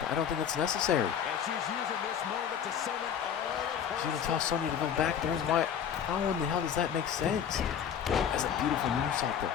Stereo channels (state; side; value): quieter; right; 8.3 dB